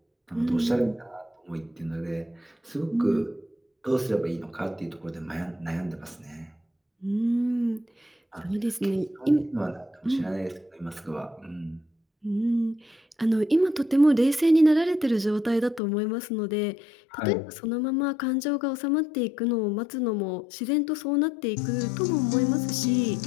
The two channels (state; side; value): drops out; right; at 15.8 s